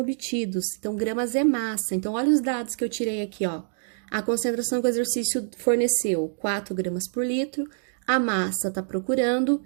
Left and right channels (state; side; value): silent; left; digital silence